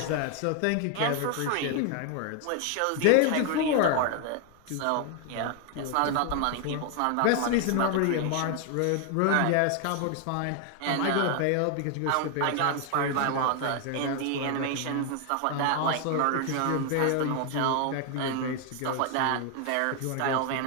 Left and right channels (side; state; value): both; different; correlation 0.00